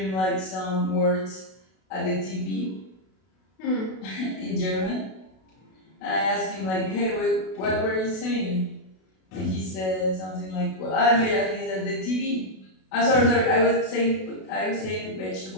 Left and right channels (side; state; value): right; late; 32 ms